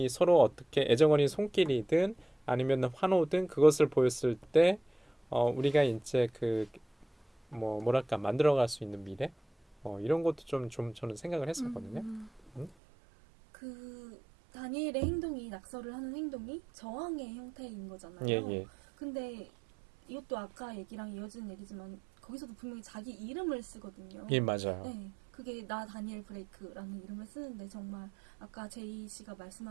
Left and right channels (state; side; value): drops out; left; at 12.7 s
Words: 서로 어떻게 애정어린 손길이든 아니면 환호든 그것을 보였을 때 우리가 이제 그 뭐랄까 만들어갈 수 있는 미래 이런 것도 좀 저는 생각을 했었거든요. 그 다니엘의 행동이 낙서를 하는 행동이 저항의 형태인 거잖아요. 예. 근데 이것도 아까 얘기랑 이어지는 얘기지만 거기서도 분명히 자기 이름을 쓰거든요. 예, 맞아요. 네, 그게 나 다니엘 브레이크라는 이름을 쓰는데 정말 아까 제이 씨가